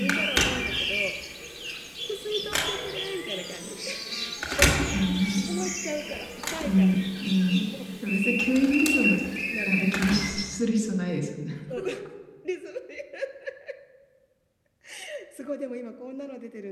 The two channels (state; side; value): identical; both; correlation 1.00